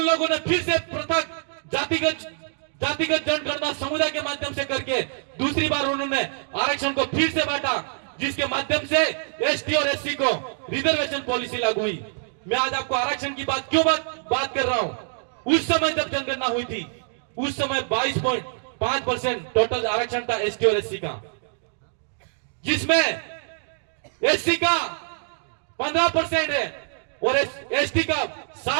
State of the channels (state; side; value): silent; left; digital silence